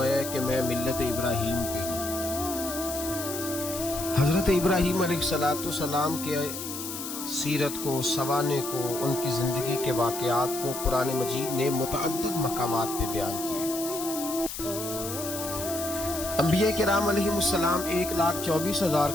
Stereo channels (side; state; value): left; noise; hiss, 7 dB below the sound